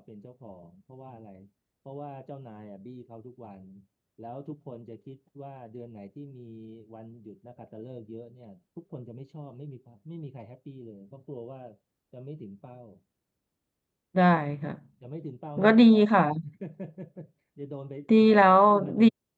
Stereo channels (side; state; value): both; identical; correlation 1.00